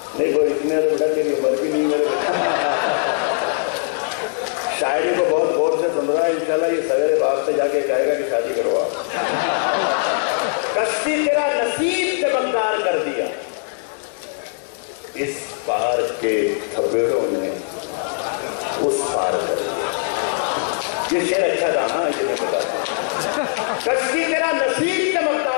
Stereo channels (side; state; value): right; silent; digital silence